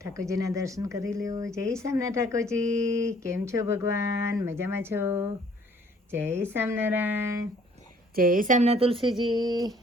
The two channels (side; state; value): both; normal; correlation 0.59